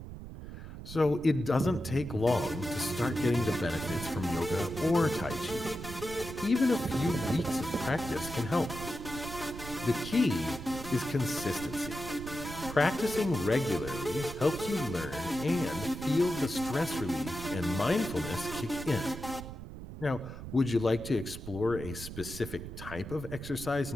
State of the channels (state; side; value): noise; right; rumble, 11 dB below the sound